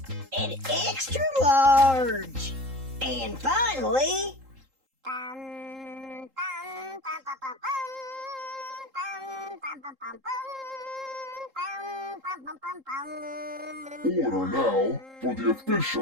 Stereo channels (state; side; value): late; left; 3.8 ms